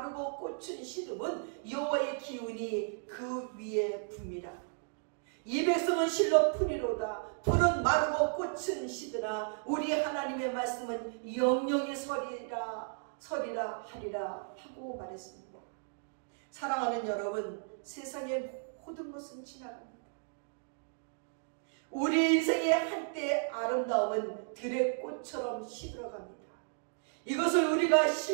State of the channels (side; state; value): left; silent; digital silence